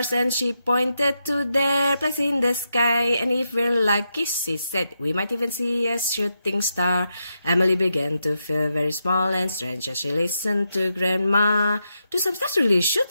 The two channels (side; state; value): both; inverted; correlation -0.85